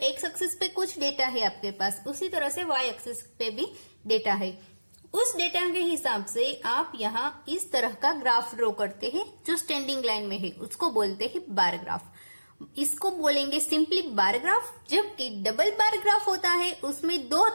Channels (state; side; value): inverted; both; correlation -1.00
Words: एक्सिस पे कुछ डेटा है आपके पास, उसी तरह से वाई एक्सिस पे भी डेटा है। उस डेटा के हिसाब से आप यहाँ इस तरह का ग्राफ ड्रॉ करते हैं जो स्टैंडिंग लाइन में है, उसको बोलते हैं बार ग्राफ। इसको बोलेंगे सिंपली बार ग्राफ। जबकि डबल बार ग्राफ होता है उसमें 2